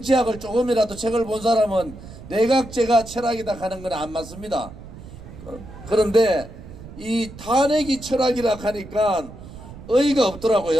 조금이라도 책을 본 사람은 내각제가 철학이다 하는 건 안 맞습니다. 그런데 이 탄핵이 철학이라 하니까 의의가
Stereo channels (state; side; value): noise; right; rumble, 15 dB below the sound